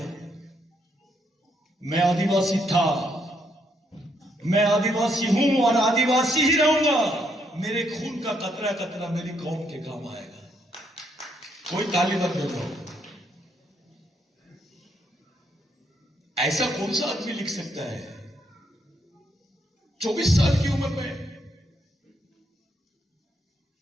मैं आदिवासी था, मैं आदिवासी हूं और आदिवासी ही रहूंगा। मेरे खून का कतरा कतरा मेरी कौम के काम आएगा। कोई ताली मत बजाओ। ऐसा कौन सा आदमी लिख सकता है 24 साल की उम्र में?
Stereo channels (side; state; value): both; normal; correlation 0.74